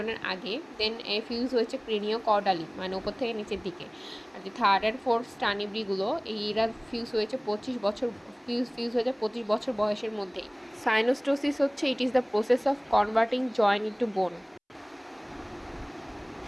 আগে, দেন ফিউজ হয়েছে ক্রেনিও কর্ডালি মানে উপর থেকে নিচের দিকে। আর যে থার্ড অ্যান্ড ফোর্থ স্টার্নিব্রিগুলো এইরা ফিউজ হয়েছে 25 বছর ফিউজ হয়ে যায় 25 বছর বয়সের মধ্যেই। সাইনোস্টোসিস হচ্ছে it is the process of converting joint into bone.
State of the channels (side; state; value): both; identical; correlation 1.00